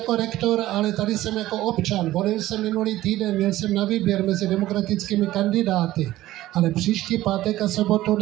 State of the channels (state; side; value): quieter; left; 15.5 dB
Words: rektor, ale tady jsem jako občan. Volil jsem minulý týden, měl jsem na výběr mezi demokratickými kandidáty, ale příští pátek a sobotu